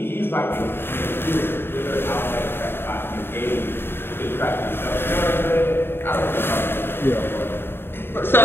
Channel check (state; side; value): late; right; 0.11 ms